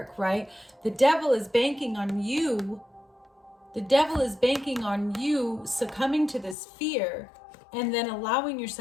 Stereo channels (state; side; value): drops out; right; at 6.6 s